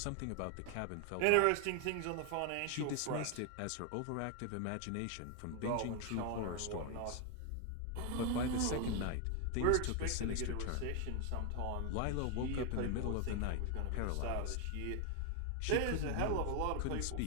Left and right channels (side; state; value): both; different; correlation 0.01